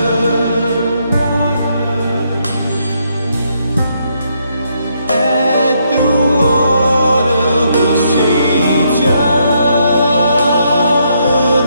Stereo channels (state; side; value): inverted; both; correlation -0.75